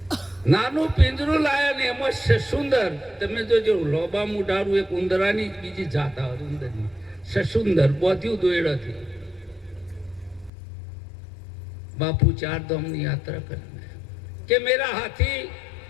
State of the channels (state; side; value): drops out; right; at 10.5 s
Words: નાનું પિંજરું લાયા ને એમાં સસુંદર, તમે જોજો લોબા મુઢારું, એક ઉંદરાની બીજી જાત આવે ઉંદરની, સસુંદર બોધ્યું દોયડાથી. બાપુ 4 ધામની યાત્રા કરે કે મેરા હાથી.